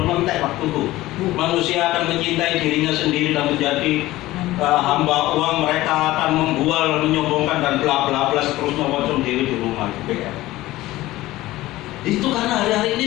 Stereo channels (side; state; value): right; quieter; 17.1 dB